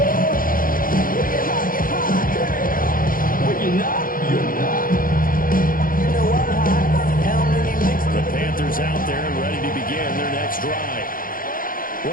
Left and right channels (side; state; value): right; late; 0.41 ms